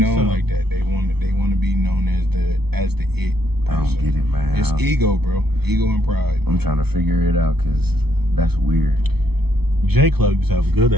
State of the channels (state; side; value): late; left; 0.97 ms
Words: so. like that. They want to be known as the it. I don't get it, man. It's ego, bro. Ego and pride. I'm trying to figure it out because that's weird. J Club used to have a good